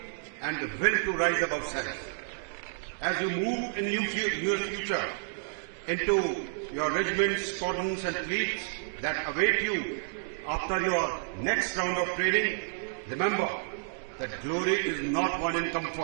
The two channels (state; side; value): silent; left; digital silence